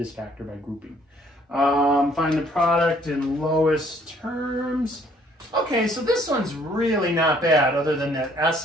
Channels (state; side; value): normal; both; correlation 0.62